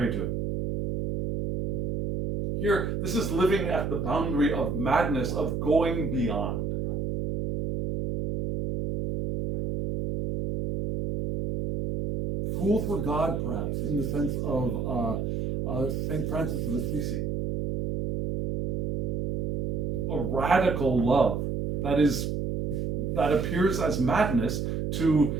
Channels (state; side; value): noise; right; hum, 1 dB below the sound